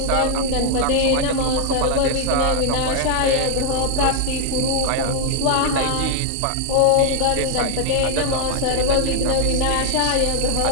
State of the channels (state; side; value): different; both; correlation 0.00